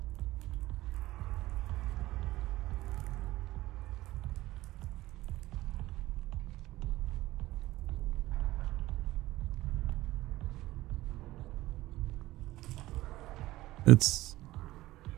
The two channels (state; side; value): quieter; left; 17.1 dB